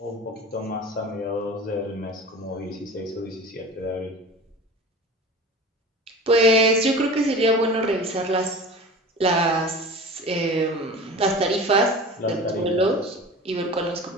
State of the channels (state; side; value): normal; both; correlation 0.36